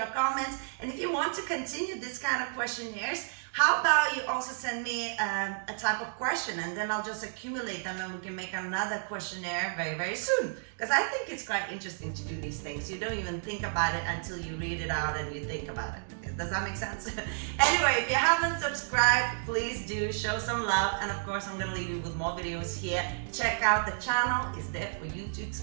comments. And if you want to continue this kind of questionnaires, how about you also send me a type of question and then I'll just accumulate them and we can make another questionnaire very, very soon. Because I think it's quite interesting to do these things. You don't even think about it until you read it out and you think about it. Does that make sense? Anyway, if you haven't subscribed, please do show some love. And of course, I'm going to leave you with more videos here. Check out the channel. It's there for you to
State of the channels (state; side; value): silent; left; digital silence